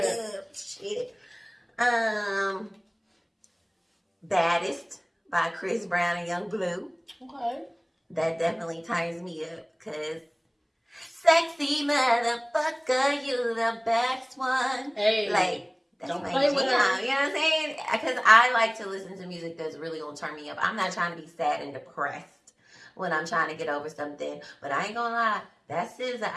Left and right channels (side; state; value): both; identical; correlation 1.00